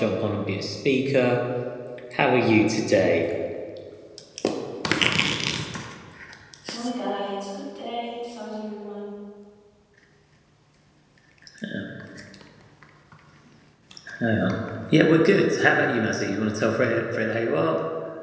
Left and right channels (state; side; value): identical; both; correlation 1.00